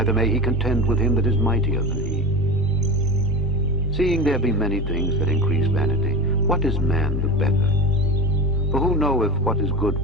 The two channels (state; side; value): noise; right; hum, 16 dB below the sound